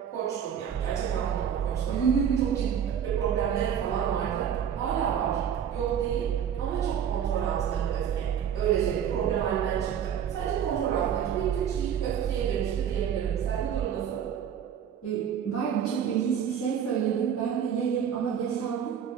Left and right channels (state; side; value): quieter; left; 8.6 dB